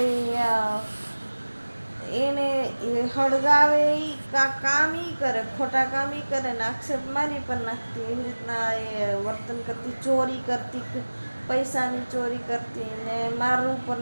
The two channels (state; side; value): inverted; both; correlation -1.00